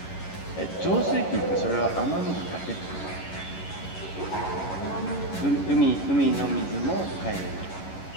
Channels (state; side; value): late; right; 11 ms